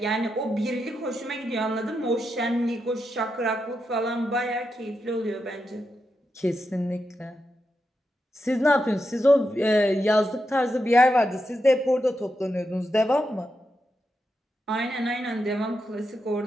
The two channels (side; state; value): both; normal; correlation 0.86